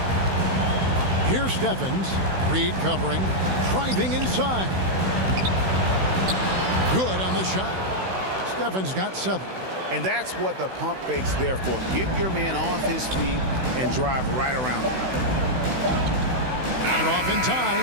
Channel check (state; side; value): late; left; 16 ms